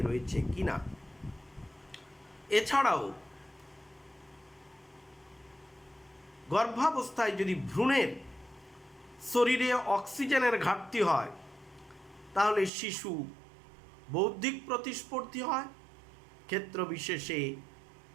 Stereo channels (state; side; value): drops out; left; at 12.7 s